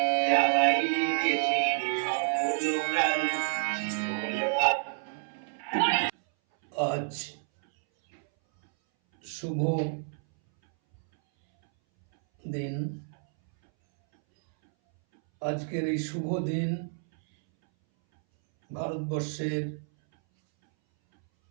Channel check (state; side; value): silent; left; 59 dB below the other